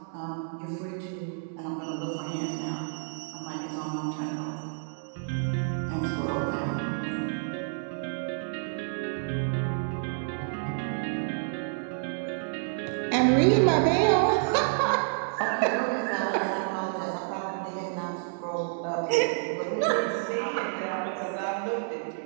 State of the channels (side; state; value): left; silent; 58 dB below the other